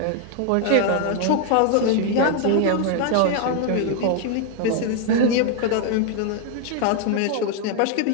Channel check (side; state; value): both; different; correlation 0.00